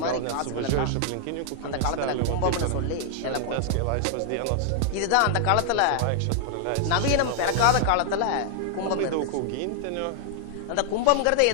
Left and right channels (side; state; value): both; different; correlation 0.00